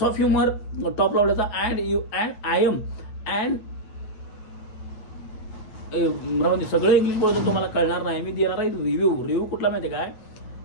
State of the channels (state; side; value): late; right; 8.8 ms